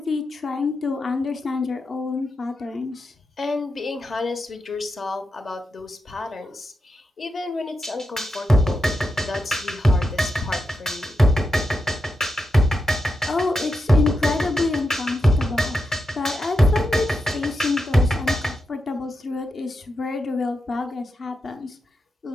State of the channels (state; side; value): normal; both; correlation 0.86